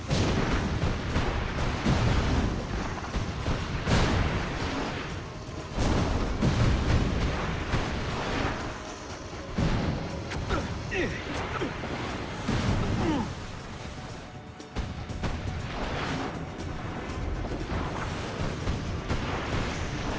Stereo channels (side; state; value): both; identical; correlation 1.00